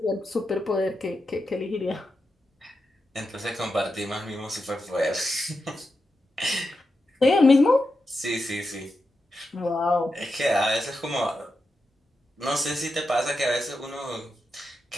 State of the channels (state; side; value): normal; both; correlation 0.88